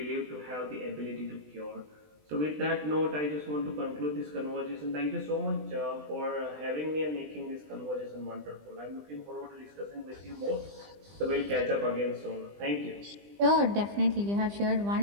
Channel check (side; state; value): left; late; 20 ms